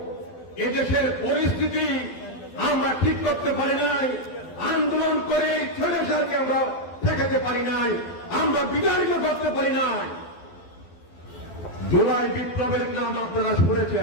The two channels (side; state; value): right; late; 12 ms